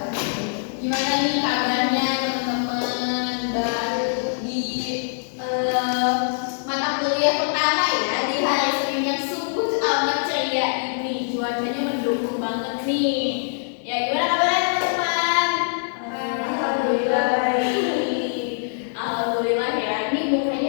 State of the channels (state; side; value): silent; right; digital silence